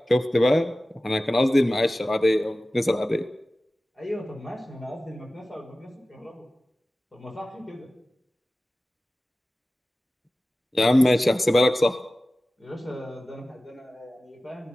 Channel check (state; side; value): normal; both; correlation 0.96